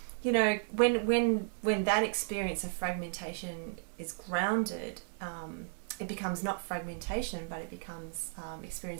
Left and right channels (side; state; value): left; silent; digital silence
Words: you know, when that experience of fragmentation is grounded, it becomes not fragmentation, but it becomes